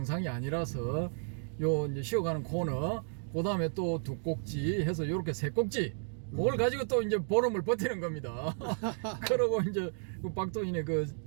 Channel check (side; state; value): left; silent; digital silence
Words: 아니라서 요 이제 쉬어가는 코너, 그 다음에 또 2꼭지 해서 요렇게 3꼭지 그걸 가지고 또 이제 보름을 버티는 겁니다. 그러고 이제 그 박도인의